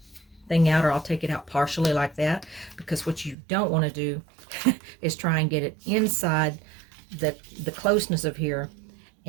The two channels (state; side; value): drops out; left; at 3.4 s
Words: thing out, or I'll take it out partially like that, because what you don't want to do is try and get it inside the closeness of here,